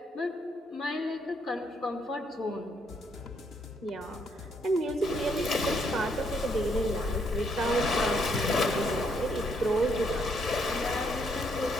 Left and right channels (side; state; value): both; normal; correlation 0.72